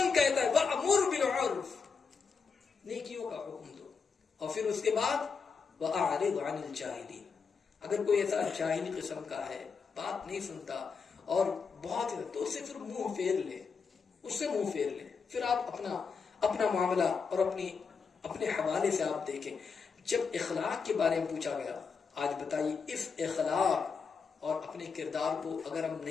کہتا ہے وَأْمُرْ بِالْعُرْفِ، نیکیوں کا حکم دو. اور پھر اس کے بعد وَأَعْرِضْ عَنِ الْجَاهِلِينَ. اگر کوئی ایسا جاہلی قسم کا ہے، بات نہیں سنتا اور بہت تو اس سے پھر منہ پھیر لے، اس سے منہ پھیر لے. پھر آپ اپنا معاملہ اور اپنے حوالے سے آپ دیکھیں. جب اخلاق کے بارے میں پوچھا گیا، آج بتائیے اس اخلاق اور اپنے کردار کو اگر ہم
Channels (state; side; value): quieter; right; 5.4 dB